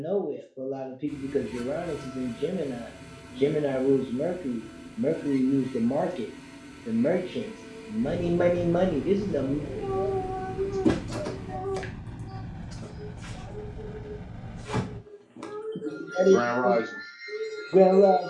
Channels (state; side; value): identical; both; correlation 1.00